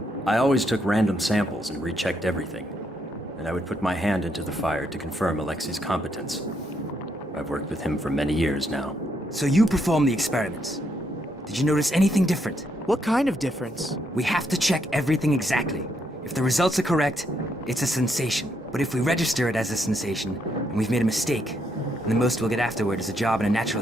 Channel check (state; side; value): normal; both; correlation 0.76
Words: I always took random samples and rechecked everything. And I would put my hand into the fire to confirm Alexei's competence. I've worked with him for many years now. So you performed the experiments. Did you notice anything different? What kind of difference? We have to check everything exactly. If the results are correct, it's a sensation. But if we register it as a sensation, and we've made a mistake, then the most we'll get afterward is a job in a